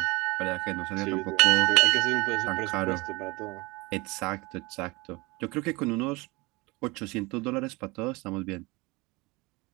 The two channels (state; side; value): quieter; left; 24.3 dB